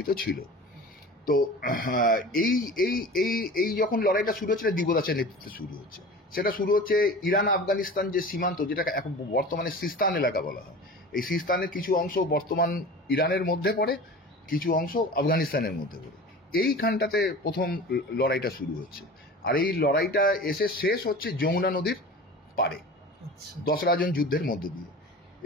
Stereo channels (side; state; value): both; normal; correlation 0.36